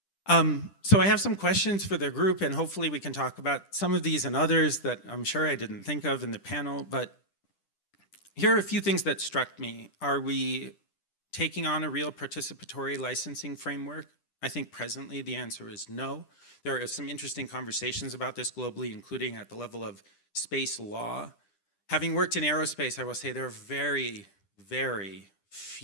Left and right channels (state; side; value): late; right; 10 ms